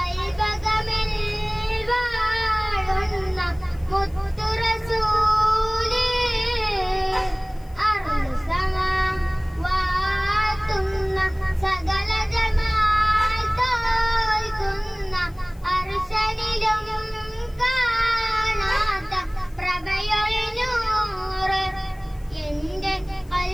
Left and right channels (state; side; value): noise; left; hiss, 28 dB below the sound